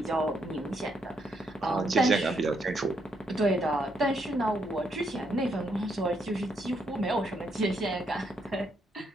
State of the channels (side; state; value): both; normal; correlation 0.76